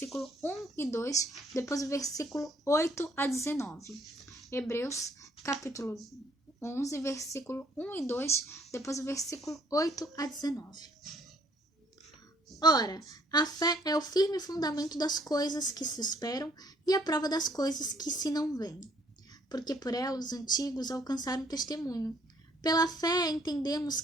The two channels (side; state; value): both; normal; correlation 0.64